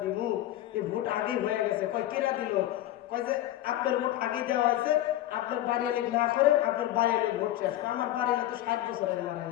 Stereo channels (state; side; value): quieter; right; 13.9 dB